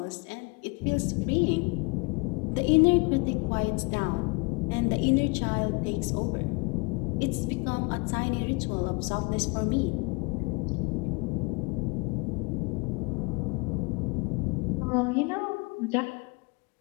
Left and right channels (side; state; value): right; quieter; 30.2 dB